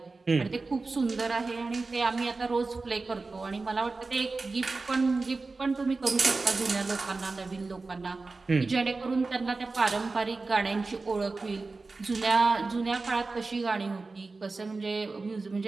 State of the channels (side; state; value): left; quieter; 3.8 dB